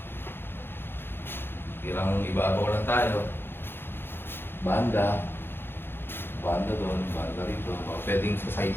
Kirang ibabaw lang tayo. Banda. Banda doon, banda rito. Baka pwedeng sa side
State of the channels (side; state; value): right; late; 0.10 ms